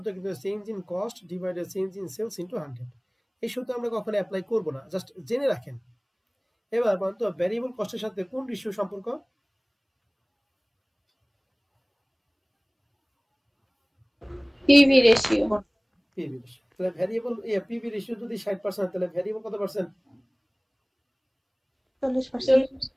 কিন্তু change in cost divided change in sales into 100। এই সূত্র আমরা কখনো অ্যাপ্লাই করব না, জাস্ট জেনে রাখেন। এবার বলতো ভ্যারিয়েবল কস্টের সাথে কোন রেশিও সম্পর্ক? PV ratio. PV ratio. তাহলে ভ্যারিয়েবল পিভি রেশিও যদি 60% তাহলে ভ্যারিয়েবল কত পার্সেন্ট? 40%.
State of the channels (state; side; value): identical; both; correlation 1.00